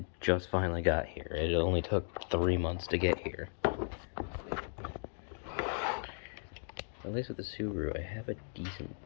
just finally got here. It only took 3 months to get here. At least with the Subaru, I have a decent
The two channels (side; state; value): right; silent; digital silence